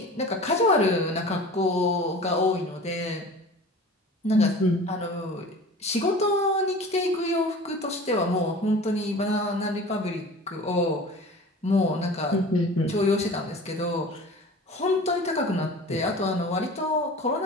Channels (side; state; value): both; normal; correlation 0.39